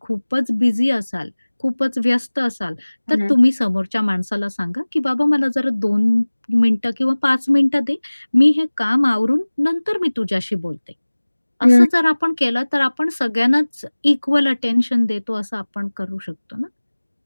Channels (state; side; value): inverted; both; correlation -1.00